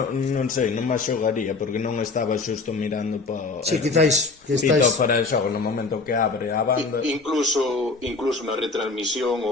sei, non me xogaría porque non estaba xusto mirando para... Sí, quizáis que estáis... fora de xogo no momento que abre a banda. Incluso na retransmisión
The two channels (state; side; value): quieter; right; 4.0 dB